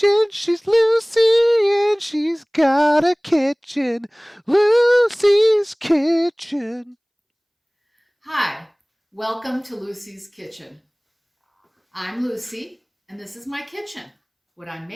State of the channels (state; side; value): identical; both; correlation 1.00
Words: She's Lucy and she's got a kitchen. Lucy's Kitchen. Hi, welcome to Lucy's Kitchen. I'm Lucy, and this is my kitchen. What I'm